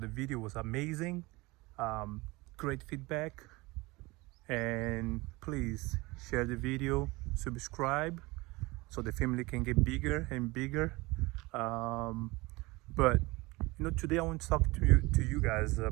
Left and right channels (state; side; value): quieter; left; 22.7 dB